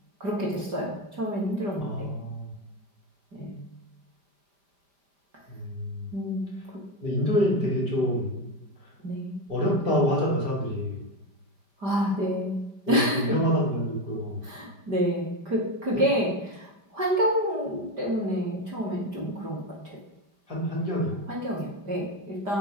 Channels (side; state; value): left; late; 5.0 ms